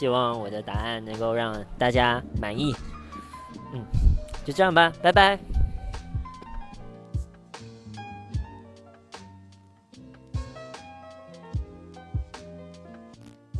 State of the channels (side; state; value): both; identical; correlation 1.00